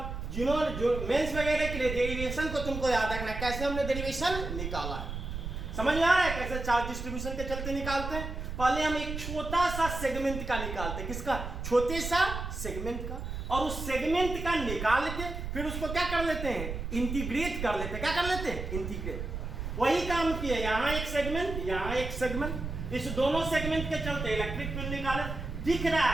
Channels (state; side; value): noise; right; rumble, 6 dB below the sound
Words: जिन्होंने जो मेंस वगैरह के लिए डेरिवेशन को तुमको याद रखना है, कैसे हमने डेरिवेशन निकाला है, समझ में आ रहा है कैसे चार्ज डिस्ट्रीब्यूशन के चलते निकालते हैं। पहले हम एक छोटा सा सेगमेंट का निकालते हैं, किसका छोटे सा सेगमेंट का, और उस सेगमेंट का निकाल के फिर उसको क्या कर लेते हैं इंटीग्रेट कर लेते हैं, क्या कर लेते हैं इंटीग्रेट। वही काम किया, यहाँ एक सेगमेंट यहाँ एक सेगमेंट, इस दोनों सेगमेंट के चलते इलेक्ट्रिक फील्ड निकाले, दिख रहा